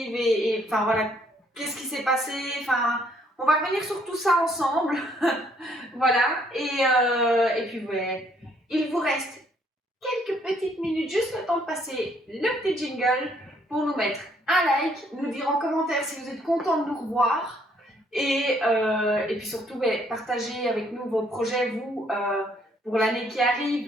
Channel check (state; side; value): normal; both; correlation 0.67